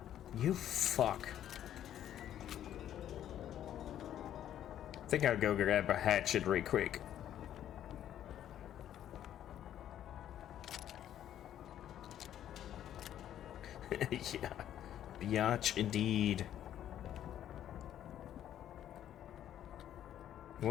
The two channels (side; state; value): right; quieter; 11.0 dB